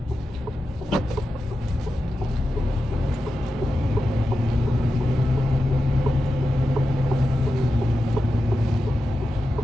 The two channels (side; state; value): both; normal; correlation 0.91